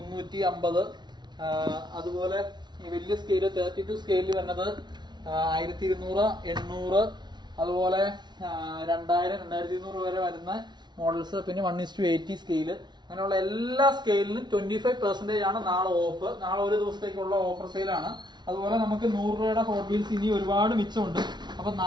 അതുപോലെ ഈ വലിയ സ്കെയില് 32 സ്കെയിലിൽ വരുന്നത് 1200, 800, അതുപോലെ 2000, 2200 വരെ വരുന്ന മോഡൽസ്, പിന്നെ 1:80 സ്കെയില്, അങ്ങനെയുള്ള എല്ലാ സ്കെയിലിനും 25% ആണ് നാളെ ഓഫ്. നാളെ ഒരു ദിവസത്തേക്കുള്ള ഓഫർ സെയിലാണ്. അതുപോലെ നമുക്ക് 100 രൂപയുടെ ഹോട്ട് വീൽസ് ഇനി ഒരുപാട് മിച്ചമുണ്ട്. അപ്പൊ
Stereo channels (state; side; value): late; left; 0.21 ms